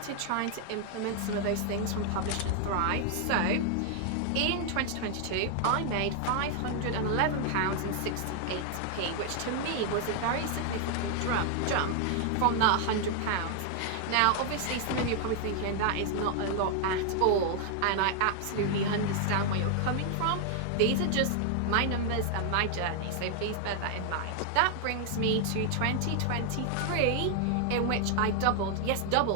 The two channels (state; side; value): different; both; correlation 0.00